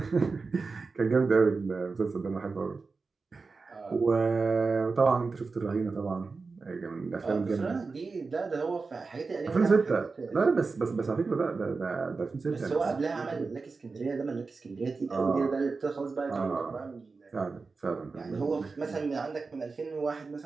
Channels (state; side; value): quieter; left; 4.3 dB